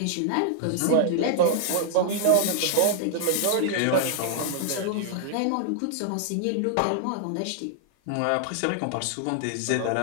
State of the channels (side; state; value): both; different; correlation 0.00